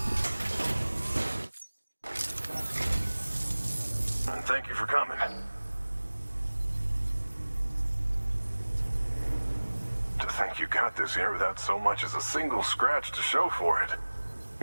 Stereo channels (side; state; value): both; inverted; correlation -1.00